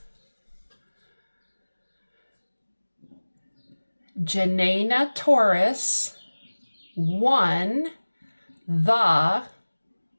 Janena Torres won the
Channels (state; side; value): inverted; both; correlation -1.00